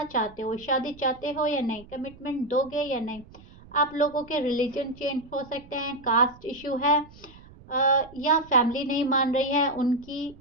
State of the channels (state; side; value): noise; right; rumble, 22 dB below the sound